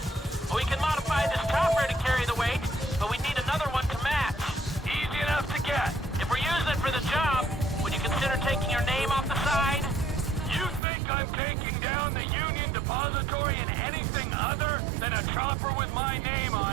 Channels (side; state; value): left; drops out; at 10.8 s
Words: We can modify this chopper to carry the weight, but we need another one to match. Easy enough to get. If we're using it for the job, would you consider taking your name off the side? You think I'm taking down the Union Depository in anything other than a chopper with my name